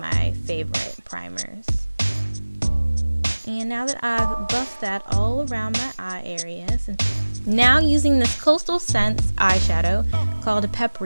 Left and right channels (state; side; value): inverted; both; correlation -1.00